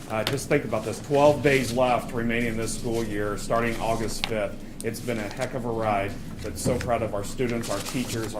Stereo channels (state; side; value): identical; both; correlation 1.00